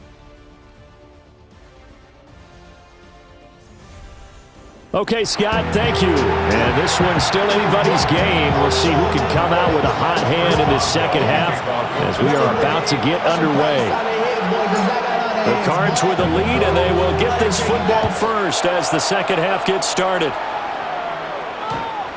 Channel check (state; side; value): identical; both; correlation 1.00